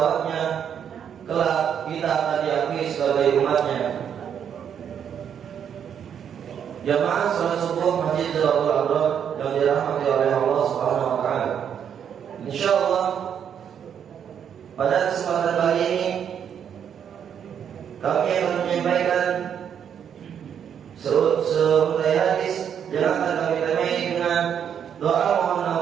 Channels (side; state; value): left; quieter; 8.4 dB